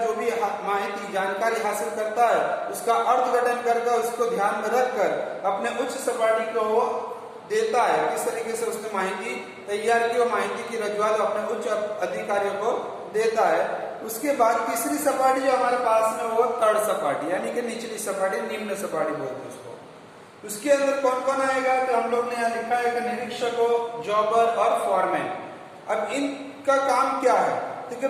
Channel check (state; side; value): identical; both; correlation 1.00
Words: जो भी माहिती जानकारी हासिल करता है उसका अर्थघटन करके उसको ध्यान में रखकर अपने उच्च सपाटी को वो देता है। किस तरीके से उसने माहिती तैयार की, वो माहिती की रजूआत अपने उच्च अधिकारियों को देता है। उसके बाद तीसरी सपाटी जो हमारे पास में वो थर्ड सपाटी यानी कि निचली सपाटी, निम्न सपाटी बोलते हैं उसको। उसके अंदर कौन कौन आएगा, तो हम लोग ने यहाँ लिखा है कि निरीक्षकों, जॉबर और फॉरमैन। अब इनका काम क्या है, क्योंकि